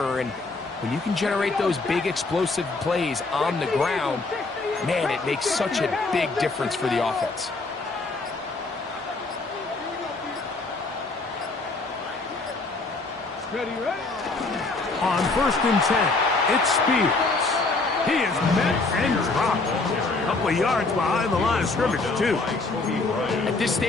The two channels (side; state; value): right; quieter; 3.5 dB